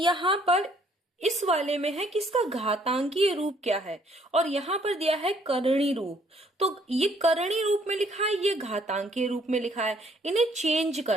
पर इस वाले में है कि इसका घातांकीय रूप क्या है और यहाँ पर दिया है करणी रूप। तो ये करणी रूप में लिखा है, ये घातांकीय रूप में लिखा है, इन्हें चेंज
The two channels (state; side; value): normal; both; correlation 0.64